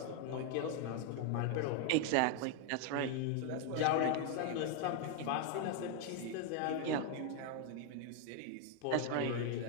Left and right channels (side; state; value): both; different; correlation 0.01